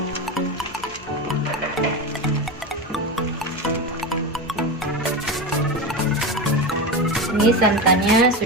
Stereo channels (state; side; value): noise; left; hum, 20 dB below the sound